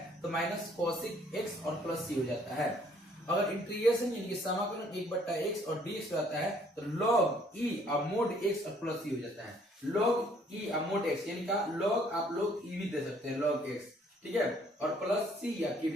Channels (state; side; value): normal; both; correlation 0.62